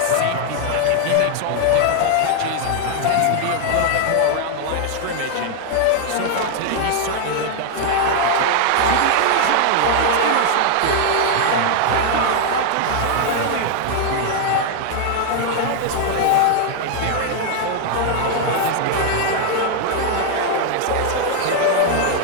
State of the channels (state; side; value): different; both; correlation 0.00